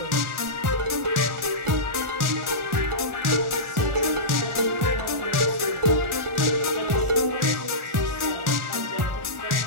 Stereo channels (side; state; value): left; late; 1.4 ms